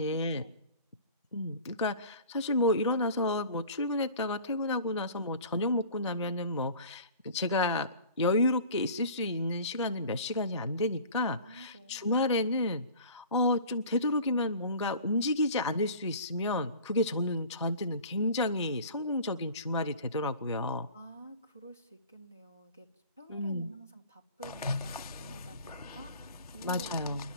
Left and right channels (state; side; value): inverted; both; correlation -0.42